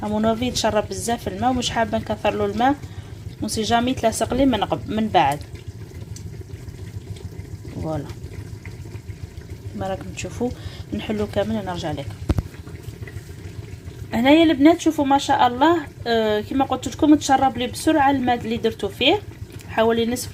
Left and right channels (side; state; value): both; identical; correlation 1.00